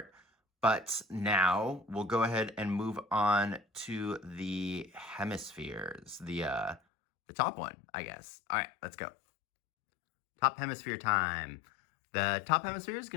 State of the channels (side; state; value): right; drops out; at 6.8 s